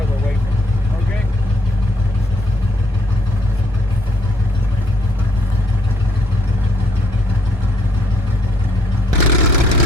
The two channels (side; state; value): both; normal; correlation 0.68